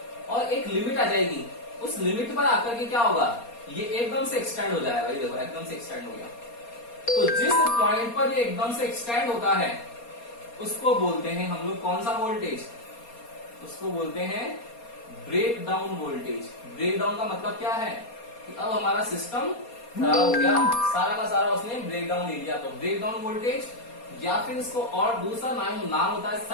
और एक लिमिट आ जाएगी, उस लिमिट पर आकर के क्या होगा, ये एकदम से एक्सटेंड हो जाएगा। ये देखो एकदम से एक्सटेंड हो गया। तो जिस पॉइंट पर ये एकदम से एक्सटेंड होता है उसको बोलते हैं हम लोग कौन सा वोल्टेज, उसको बोलते हैं break down voltage. Break down का मतलब क्या है कि अब हमारा सिस्टम खराब हो गया, सारा का सारा उसने ब्रेक डाउन ले लिया, तो ब्रेक डाउन वोल्टेज, या फिर इसको और दूसरा नाम होता है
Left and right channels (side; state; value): right; late; 4.3 ms